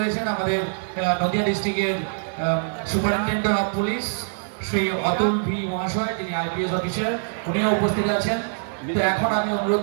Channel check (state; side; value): silent; left; digital silence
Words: আমাদের নদিয়া ডিস্ট্রিক্টের superintendent of police Shri Atul V মহাশয়, যিনি আইপিএস অফিসার, উনিও উপস্থিত আছেন। তো এখন আমি অনুরোধ